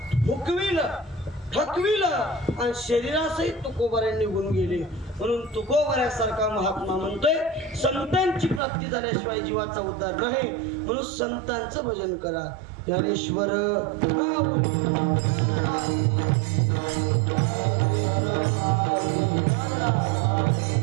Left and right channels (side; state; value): left; drops out; at 8.6 s